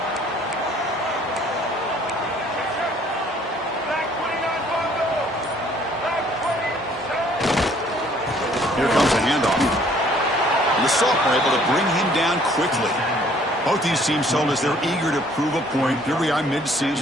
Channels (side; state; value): both; normal; correlation 0.59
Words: Here comes a handoff. The sophomore able to bring him down quickly. Both these teams told us they're eager to prove a point. Here we are